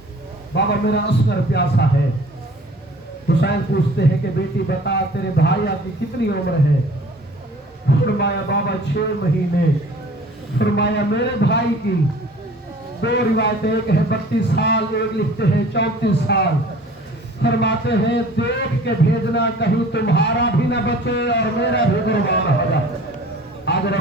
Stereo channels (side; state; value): both; normal; correlation 0.48